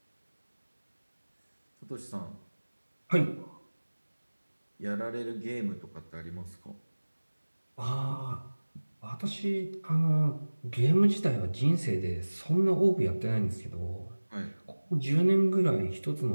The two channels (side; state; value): both; inverted; correlation -1.00